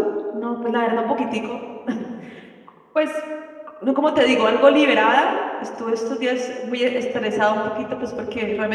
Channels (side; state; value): both; identical; correlation 1.00